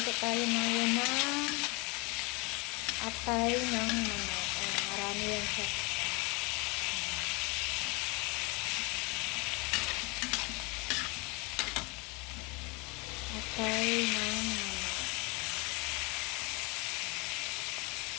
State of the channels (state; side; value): quieter; right; 28.5 dB